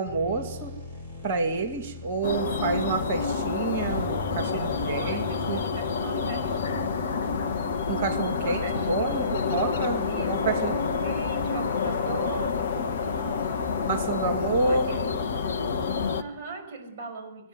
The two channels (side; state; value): both; inverted; correlation -0.50